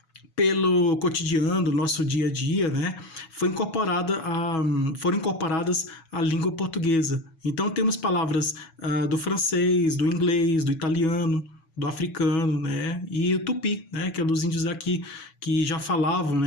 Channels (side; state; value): right; late; 7.2 ms